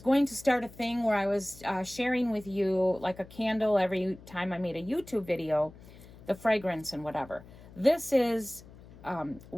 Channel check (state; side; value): noise; left; hum, 20 dB below the sound